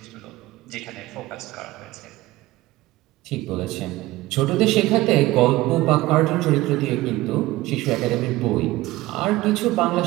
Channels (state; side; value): quieter; left; 18.0 dB